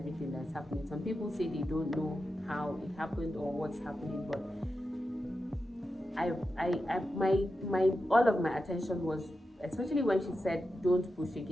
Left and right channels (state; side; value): normal; both; correlation 0.90